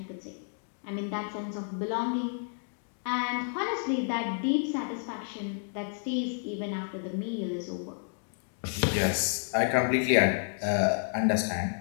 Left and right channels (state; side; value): silent; right; 57 dB below the other